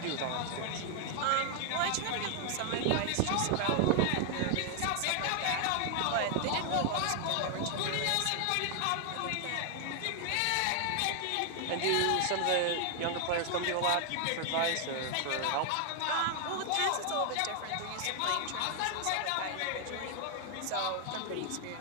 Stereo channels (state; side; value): different; both; correlation 0.00